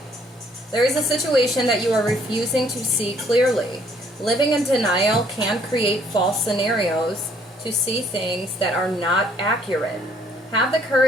There is a situation that you are refusing to see clearly. Living in denial can create false scenarios to see things that are not accurate. Have the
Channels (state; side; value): normal; both; correlation 0.64